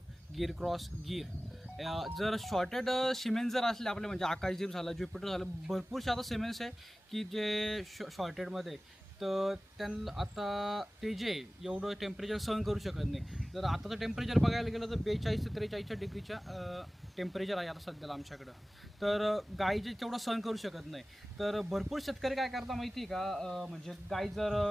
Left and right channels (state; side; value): normal; both; correlation 0.97